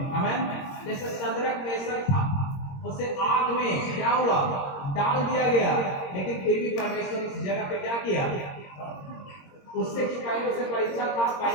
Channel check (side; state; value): right; late; 22 ms